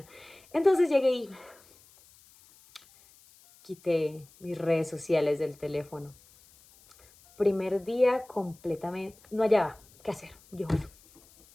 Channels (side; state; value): left; noise; hiss, 27 dB below the sound